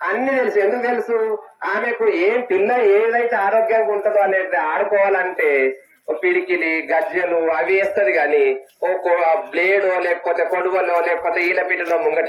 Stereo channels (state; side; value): identical; both; correlation 1.00